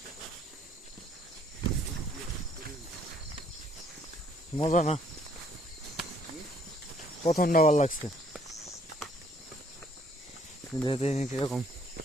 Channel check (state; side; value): normal; both; correlation 0.64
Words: মজা না, প্রথমটা ভালো লাগছে, যেতে কিরকম